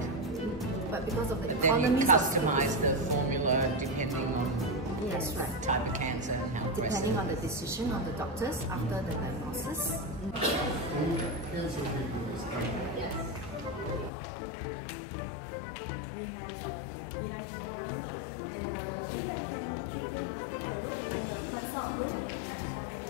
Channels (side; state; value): right; drops out; at 14.1 s